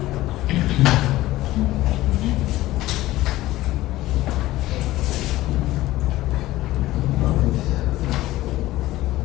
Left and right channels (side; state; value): right; quieter; 16.6 dB